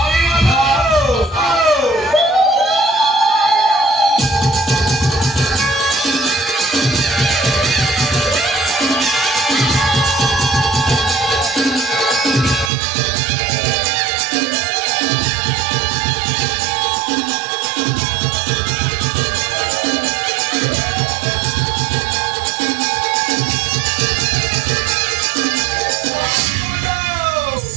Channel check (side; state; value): left; drops out; at 12.7 s